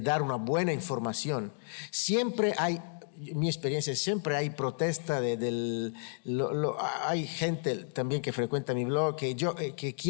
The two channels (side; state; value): right; silent; digital silence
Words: dar una buena información. Siempre hay, mi experiencia, siempre hay protesta hay gente también que frecuenta mi blog que